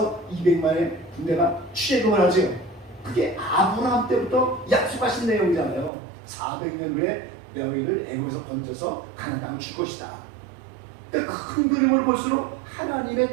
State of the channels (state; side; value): drops out; left; at 5.9 s